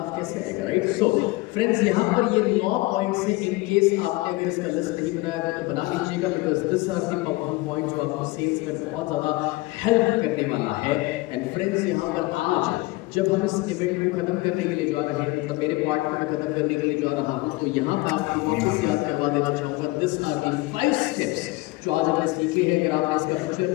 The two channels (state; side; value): quieter; right; 21.6 dB